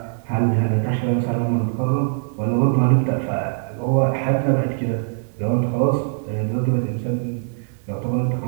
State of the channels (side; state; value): left; silent; 59 dB below the other